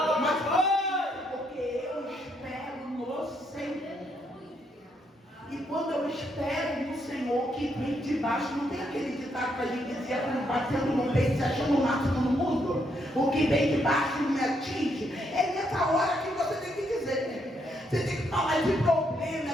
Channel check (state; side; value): normal; both; correlation 0.75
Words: Mas porque eu espero no Senhor. E quando eu espero no Senhor, que vem de baixo, não tem aquele ditado que a gente dizia, quando batendo no peito, se achando o máximo no mundo? O que vem de baixo não me atinge. É nessa hora que você tem que dizer. Você tem que falar de problema,